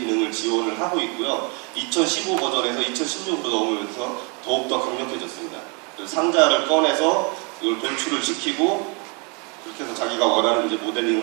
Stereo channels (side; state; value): left; quieter; 33.8 dB